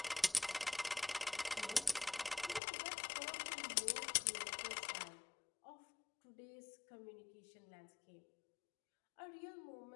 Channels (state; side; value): drops out; right; at 2.6 s